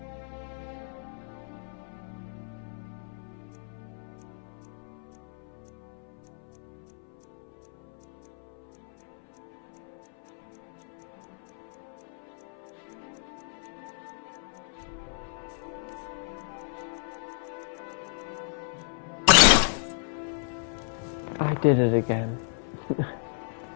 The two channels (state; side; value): silent; right; 56 dB below the other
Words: I did it again.